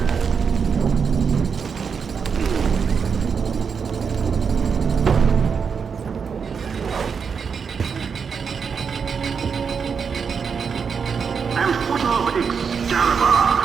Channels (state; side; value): quieter; left; 6.1 dB